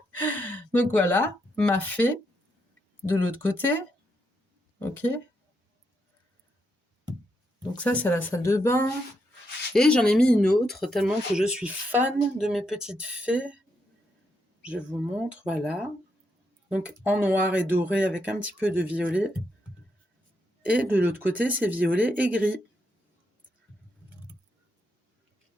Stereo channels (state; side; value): normal; both; correlation 0.80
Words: Donc voilà, ma fée de l'autre côté. Ok. Donc ça c'est la salle de bain. Et j'en ai mis une autre tellement que je suis fan de mes petites fées. Je vous montre, voilà. Donc en noir et doré avec un petit peu de violet. Et de l'autre côté c'est violet et gris.